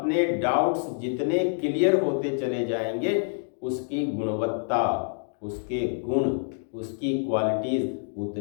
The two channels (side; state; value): right; silent; digital silence